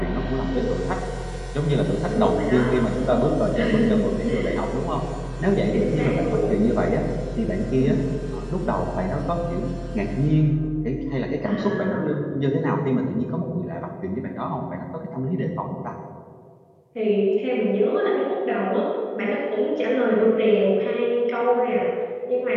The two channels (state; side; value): identical; both; correlation 1.00